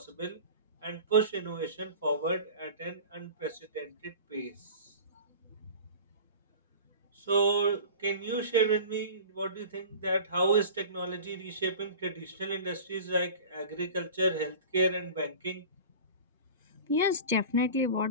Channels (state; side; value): inverted; both; correlation -0.36